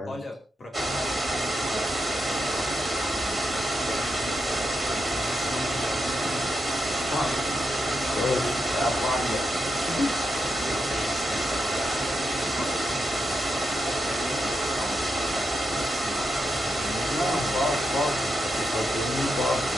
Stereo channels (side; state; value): both; normal; correlation 0.84